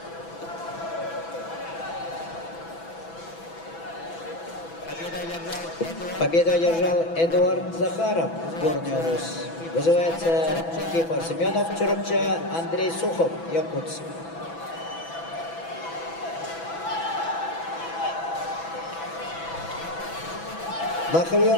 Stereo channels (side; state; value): right; late; 6.0 ms